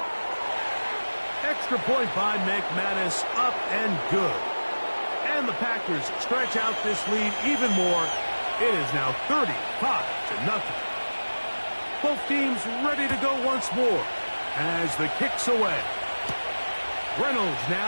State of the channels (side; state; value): both; inverted; correlation -1.00